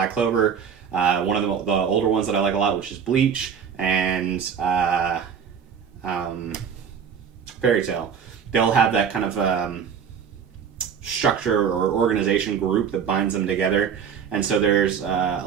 Clover. One of the older ones that I like a lot, which is Bleach, and Fairy Tail. They'll have that kind of structure or organization group that binds them together, and so there's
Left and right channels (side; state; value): left; quieter; 7.3 dB